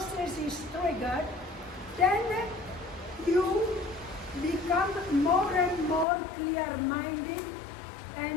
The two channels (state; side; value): drops out; right; at 6.1 s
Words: is triggered, then you become more and more clear-minded